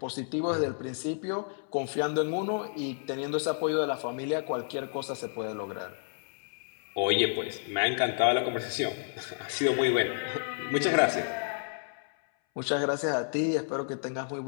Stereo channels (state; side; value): silent; right; 57 dB below the other